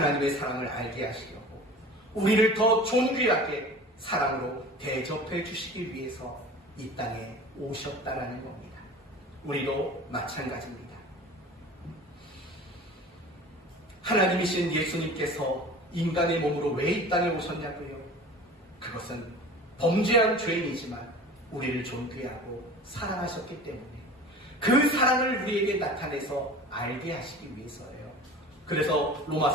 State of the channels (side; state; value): both; normal; correlation 0.39